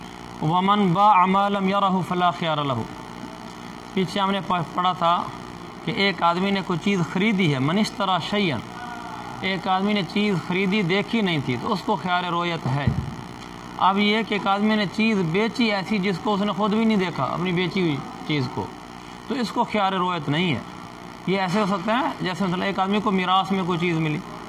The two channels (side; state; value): both; identical; correlation 1.00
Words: ومن باع ما لم يره فلا خيار له۔ پیچھے ہم نے پڑھا تھا کہ ایک آدمی نے کوئی چیز خریدی ہے، من اشترى شيئا، ایک آدمی نے چیز خریدی دیکھی نہیں تھی تو اس کو خیار رویت ہے۔ اب یہ کہ ایک آدمی نے چیز بیچی ایسی جس کو اس نے خود بھی نہیں دیکھا، اپنی بیچی ہوئی چیز کو، تو اس کو خیار رویت نہیں ہے۔ یہ ایسے ہو سکتا ہے جیسے مثلا ایک آدمی کو میراث میں کوئی چیز ملی،